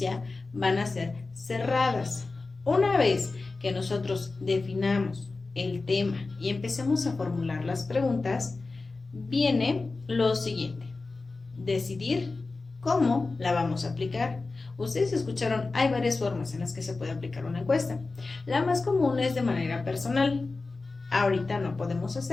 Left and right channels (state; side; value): quieter; right; 3.7 dB